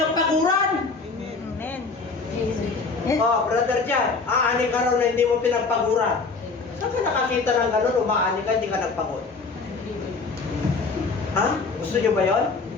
Amen. Brother Jan, aani ka raw na hindi mo pinagpaguran. Saan ka nakakita ng gano'n, umaani ka, hindi ka nagpagod? Ha? Gusto nyo ba yun?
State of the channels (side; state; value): right; quieter; 4.3 dB